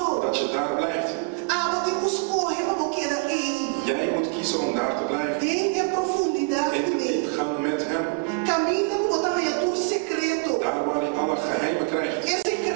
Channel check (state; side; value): quieter; left; 31.2 dB